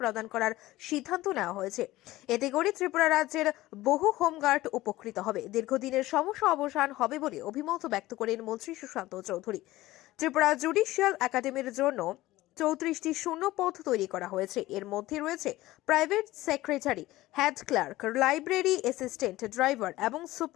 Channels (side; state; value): right; quieter; 17.2 dB